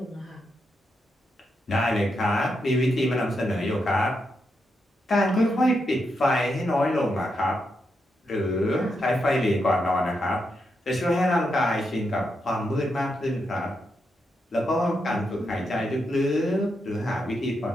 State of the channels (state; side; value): normal; both; correlation 0.83